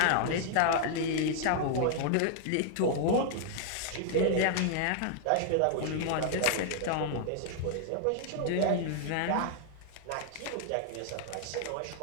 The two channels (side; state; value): both; different; correlation -0.01